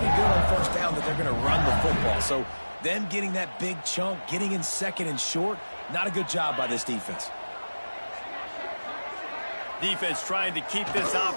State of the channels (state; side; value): inverted; both; correlation -1.00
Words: good on first down that they're going to run the football. So them getting that big chunk, getting in second and short, not a good job by this defense. Defense trying to keep this